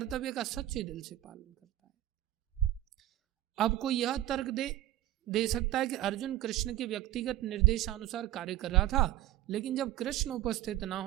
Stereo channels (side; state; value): left; quieter; 14.4 dB